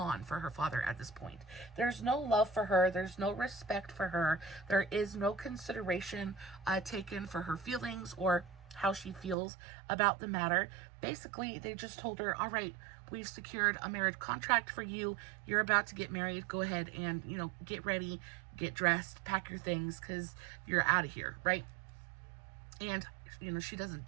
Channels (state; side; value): drops out; left; at 9.3 s